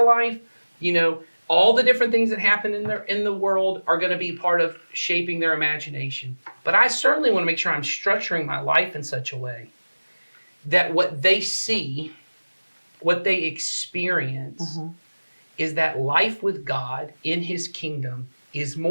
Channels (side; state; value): both; inverted; correlation -1.00